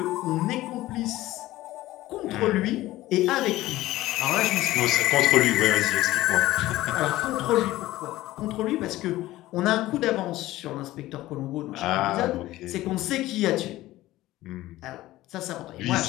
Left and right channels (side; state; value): right; quieter; 16.5 dB